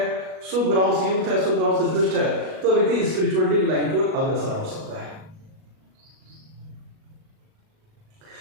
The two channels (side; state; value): left; late; 37 ms